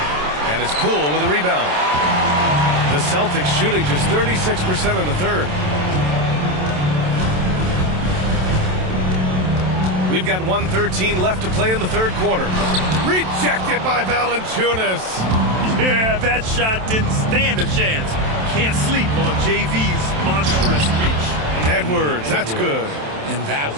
And it's Poole with a rebound. The Celtics shooting just 36% in the 3rd. We've got 1:13 left to play in the 3rd quarter. Rejected by Valanciunas. Yeah, that shot didn't stand a chance. Can't sleep on JV's monstrous reach. Edwards, that's good. And that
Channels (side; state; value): left; late; 27 ms